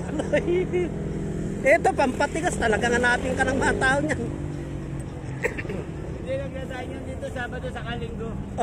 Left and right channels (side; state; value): both; identical; correlation 1.00